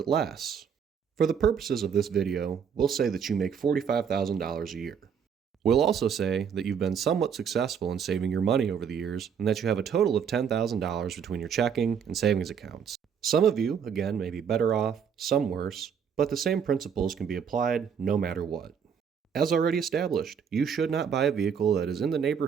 less. For the purposes of this video, we'll say that you make $45,000 a year. We'll also say that you've been somewhat successful in saving your money over the years and that you have a total of $10,000 between your checking and savings accounts. Some of you, again, may be better off, some worse, but the same principles can be applied no matter what. As already established, you should not buy a vehicle that is in the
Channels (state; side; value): quieter; left; 7.2 dB